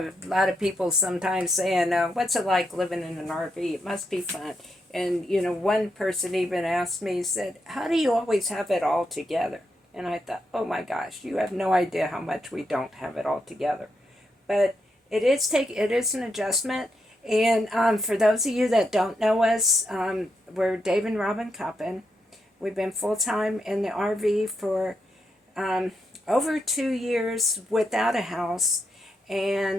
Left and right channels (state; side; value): normal; both; correlation 0.82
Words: lot of people sometimes saying, what's it like living in an RV? It must be fun. And, one person even asked me, said, how do you always have it all together? And I thought, oh my gosh, you have no idea how much we don't have it all together. But it is an adjustment. And for those of you that don't know us, we're Dave and Robin Coppin. We've been full time in the RV for over 2 years without a house,